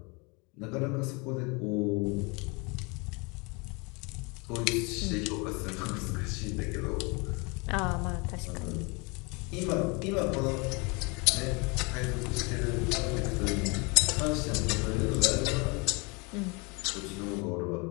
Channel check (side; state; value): right; quieter; 29.5 dB